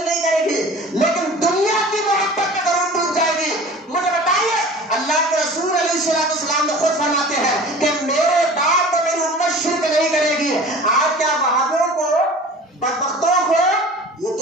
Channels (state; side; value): normal; both; correlation 0.41